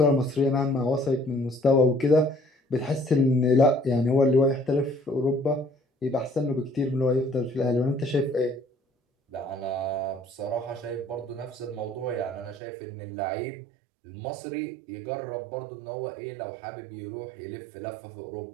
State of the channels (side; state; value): left; drops out; at 12.6 s